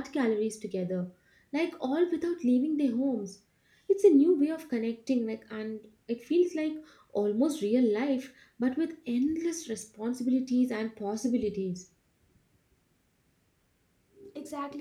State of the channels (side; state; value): both; identical; correlation 1.00